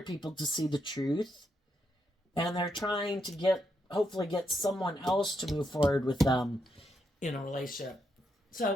people to see the truth, and they're trying to hopefully get someone else to move forward with them in a relationship.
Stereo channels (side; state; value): both; normal; correlation 0.80